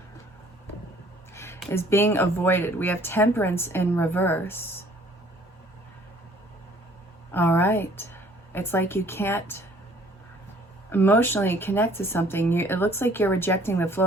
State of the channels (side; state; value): both; normal; correlation 0.57